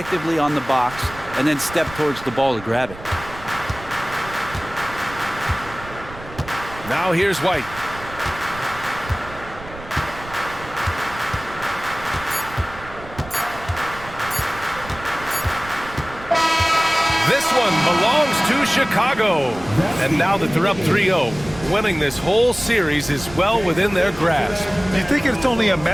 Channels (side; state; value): right; noise; rumble, 16 dB below the sound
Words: on the box and then stepped towards the ball to grab it. Now here's White. This one belongs to Chicago. And now that they're up 3-0, winning this whole series is well within their grasp. You think it's only a